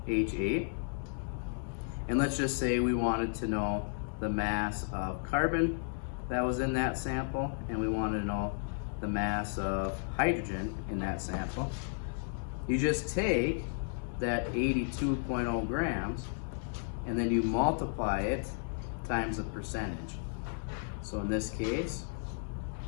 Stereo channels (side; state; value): right; silent; digital silence